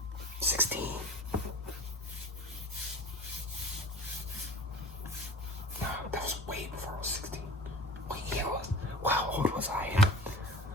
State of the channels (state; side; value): normal; both; correlation 0.39